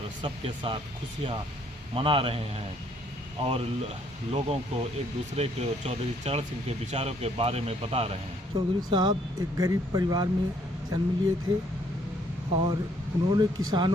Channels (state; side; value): normal; both; correlation 0.66